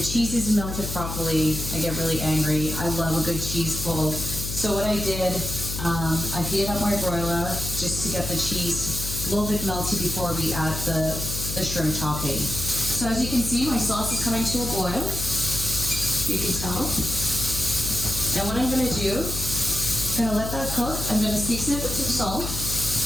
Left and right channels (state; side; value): noise; left; hum, 6 dB below the sound